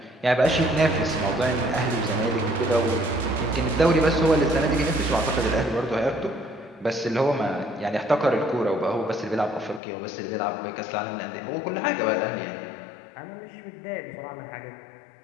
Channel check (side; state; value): right; drops out; at 9.8 s